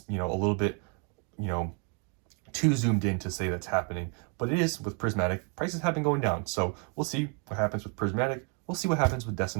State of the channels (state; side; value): quieter; left; 37.6 dB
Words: a little bit too zoomed in to say that's happening, but it is with Prismatic. Prices have been going down, so we'll see what happens with Prismatic. We'll see what happens with